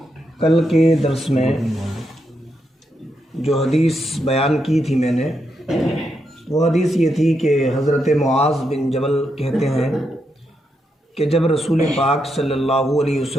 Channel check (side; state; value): both; normal; correlation 0.82